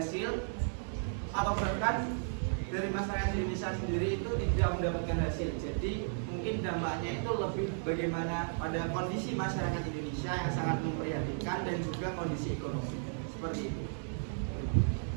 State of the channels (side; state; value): left; silent; digital silence